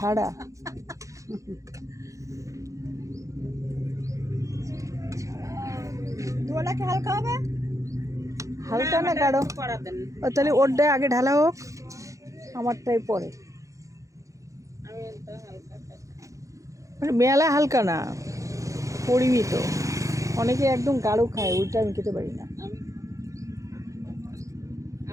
হালকা হবে, হালকা না গাঢ়? ও তাহলে ওরটাই আগে ঢালা হোক, আমারটাই পরে। মানে মেলা হালকা না, পরিমিত। অনেকে একদম গাঢ় খায়, ওইটা আমি খেতে পারি না।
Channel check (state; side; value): late; left; 0.15 ms